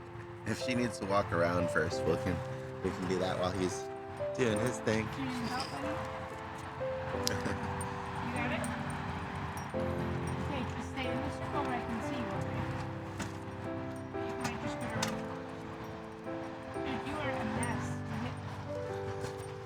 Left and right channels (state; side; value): identical; both; correlation 1.00